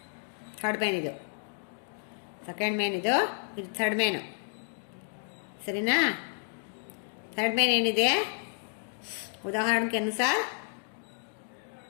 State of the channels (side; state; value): right; silent; 56 dB below the other